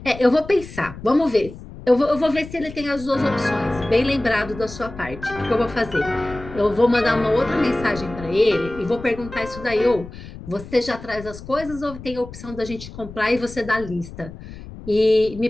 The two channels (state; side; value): noise; left; rumble, 14 dB below the sound